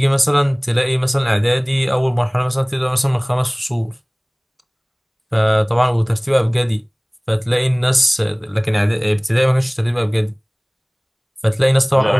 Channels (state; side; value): identical; both; correlation 1.00